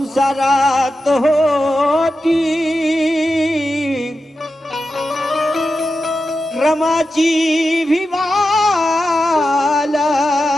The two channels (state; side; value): normal; both; correlation 0.91